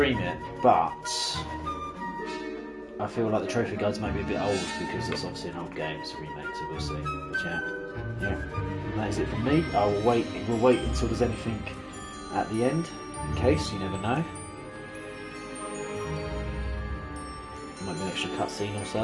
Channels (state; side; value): identical; both; correlation 1.00